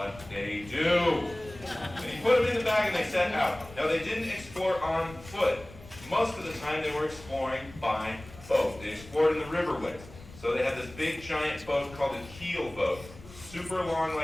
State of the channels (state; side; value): noise; left; rumble, 18 dB below the sound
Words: they do. And he put them in the bag and they set out. Now they didn't explore on foot. Most of the time they were exploring by boat. They explored in the riverways. So they had this big giant boat called a keel boat. Super long